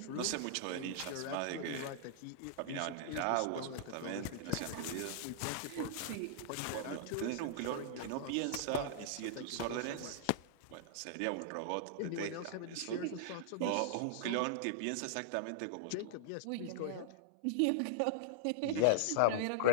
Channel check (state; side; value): different; both; correlation -0.01